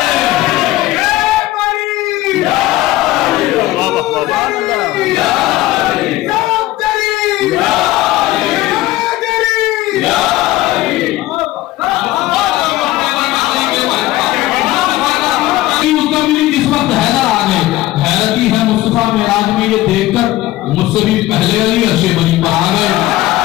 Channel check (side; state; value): right; quieter; 16.7 dB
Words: मेराज में ये देखकर मुझसे भी पहले अली अर्शे बनी पर आ गए।